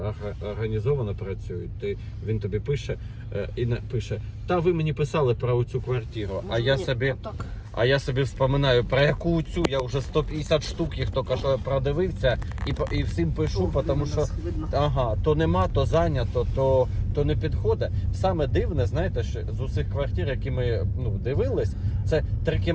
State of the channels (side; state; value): both; identical; correlation 1.00